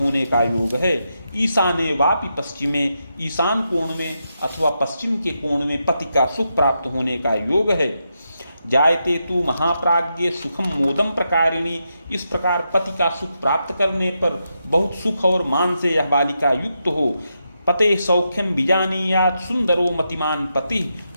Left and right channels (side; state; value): both; inverted; correlation -0.84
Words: का योग है। ईशाने वापि पश्चिमे, ईशान कोण में अथवा पश्चिम के कोण में पति का सुख प्राप्त होने का योग है। जायते तु महाप्राज्ञे सुखम मोदम प्रकारिणी। इस प्रकार पति का सुख प्राप्त करने पर बहुत सुख और मान से यह बालिका युक्त हो। पते सौख्यम बीजानीयात सुंदरो मतिमान पति।